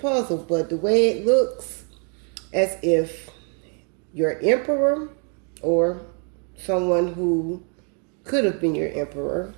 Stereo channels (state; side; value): quieter; left; 39.7 dB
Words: but the way it looks, as if your emperor or someone who could have been your emperor